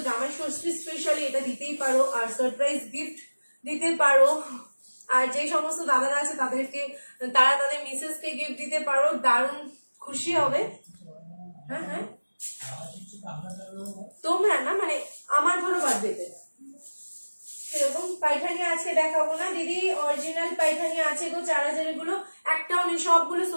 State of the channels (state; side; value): inverted; both; correlation -1.00